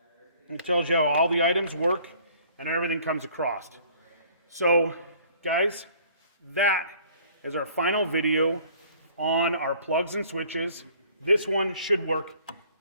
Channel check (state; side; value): inverted; both; correlation -0.55